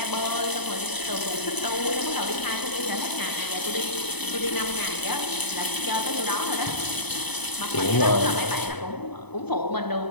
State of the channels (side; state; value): right; late; 0.98 ms